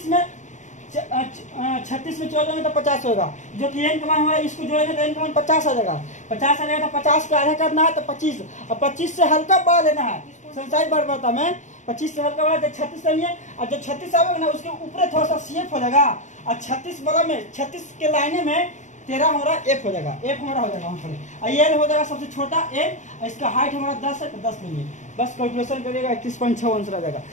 में 14 में तो 50 होगा, जो कि n का मान हमारा इसको जोड़ेंगे तो n का मान 50 आ जाएगा। 50 आ जाएगा तो 50 का आधा करना है तो 25, और 25 से हल्का बड़ा लेना है। संसारिक बारंबारता में 25 से हल्का बड़ा तो 36 लेंगे, और जो 36 आएगा ना उसके ऊपर थोड़ा सा CF हो जाएगा, और 36 वाला में 36 के लाइने में 13 हमारा F हो जाएगा, F हमारा हो जाएगा वहाँ पर, और L हो जाएगा सबसे छोटा L, इसका हाइट हमारा 10 है तो 10 लेंगे, बस कैलकुलेशन करिएगा 31.6 आंसर आ जाएगा।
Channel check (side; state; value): right; late; 0.35 ms